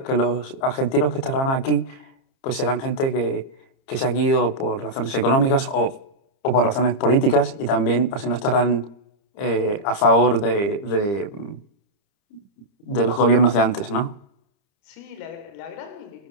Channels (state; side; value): late; right; 30 ms